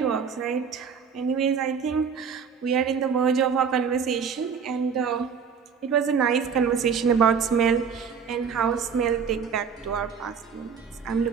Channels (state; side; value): quieter; left; 6.4 dB